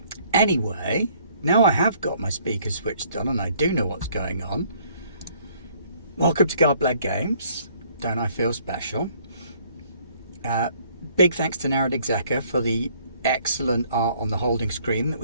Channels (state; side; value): inverted; both; correlation -0.62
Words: Anyway, now I have got my speakers switched on and I do know what's going on. Welcome to Garblag Games. Don't I feel special? Big thanks to Narrad Execa for the excellent art on the holding screen that